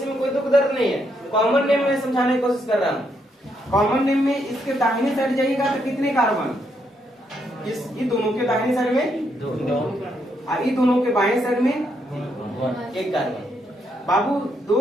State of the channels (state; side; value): normal; both; correlation 0.77